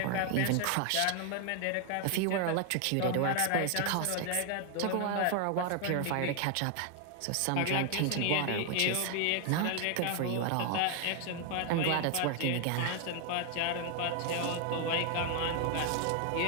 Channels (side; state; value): both; different; correlation 0.00